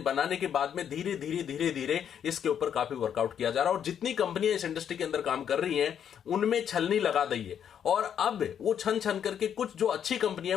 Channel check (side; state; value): right; quieter; 8.7 dB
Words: बनाने के बाद में धीरे धीरे इसके ऊपर काफी वर्कआउट किया जा रहा है और जितनी कंपनियां इस इंडस्ट्री के अंदर काम कर रही हैं उनमें छलनी लगा दी है और अब वो छन करके कुछ जो अच्छी